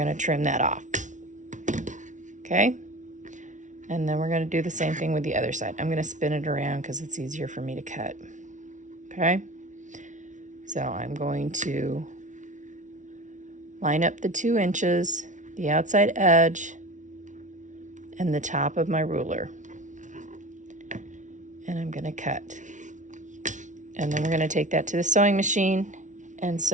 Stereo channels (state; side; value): late; left; 0.37 ms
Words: to trim that off. Okay? And then we're going to do the same thing with the other side. I'm going to spin it around because it's easier for me to cut. Okay? So I'm going to line up the 2 inches, the outside edge, and the top of my ruler. And I'm going to cut. And then we're going to take that to the sewing machine and